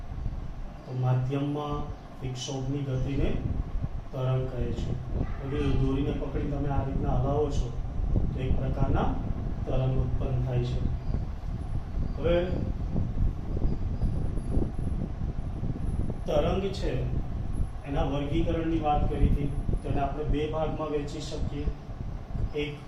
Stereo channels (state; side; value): identical; both; correlation 1.00